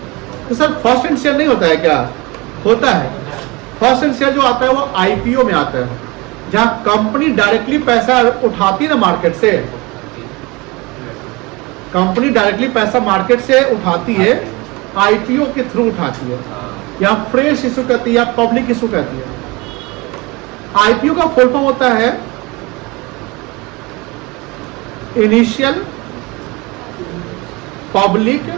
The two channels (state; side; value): quieter; left; 24.8 dB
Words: तो सर फर्स्ट हैंड शेयर नहीं होता है क्या? होता है। फर्स्ट हैंड शेयर जो आता है वो आईपीओ में आता है, जहां कंपनी डायरेक्टली पैसा उठाती है ना मार्केट से। कंपनी डायरेक्टली पैसा मार्केट से उठाती है, आईपीओ के थ्रू उठाती है, या फ्रेश इशू कहती है या पब्लिक इशू कहती है। आईपीओ का फुल फॉर्म होता है इनिशियल पब्लिक